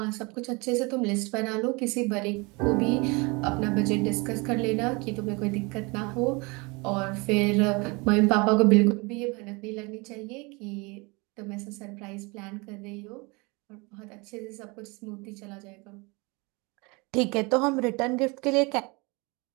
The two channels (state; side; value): quieter; left; 27.4 dB